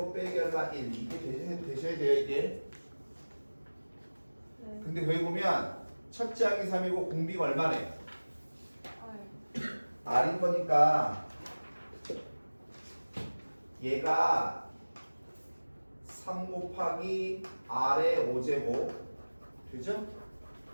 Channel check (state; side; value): inverted; both; correlation -1.00